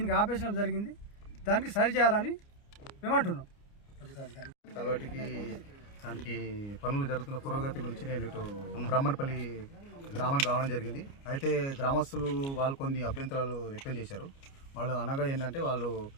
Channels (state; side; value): late; right; 29 ms